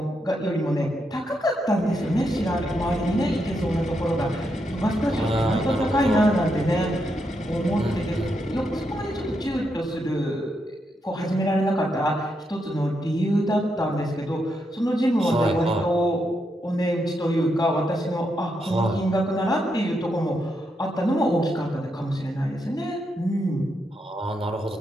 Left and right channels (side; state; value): both; normal; correlation 0.82